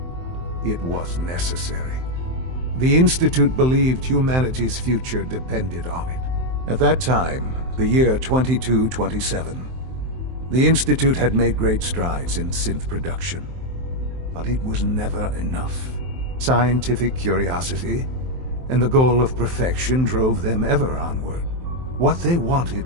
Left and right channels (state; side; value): late; left; 23 ms